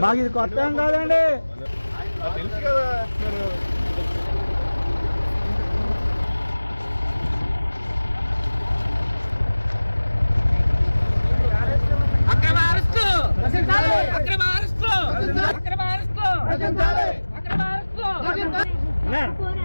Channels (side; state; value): both; inverted; correlation -1.00